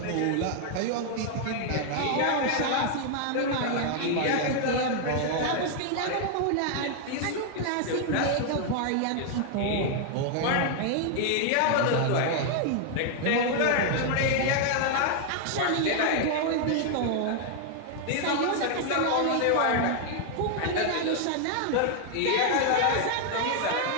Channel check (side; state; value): both; different; correlation 0.00